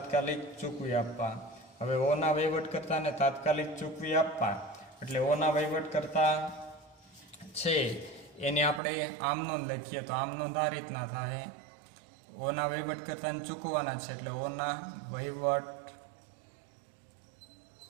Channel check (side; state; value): left; drops out; at 8.8 s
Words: ચૂકવી આપવા. હવે ઓના વહીવટ કરતાને તાત્કાલિક ચૂકવી આપવા એટલે ઓના વહીવટ કરતા છે એને આપણે આમ નોંધ લખીએ તો આમ નોંધ આ રીતના થાય. ઓના વહીવટ કરતાને ચૂકવવાના છે એટલે ઓના વહીવટ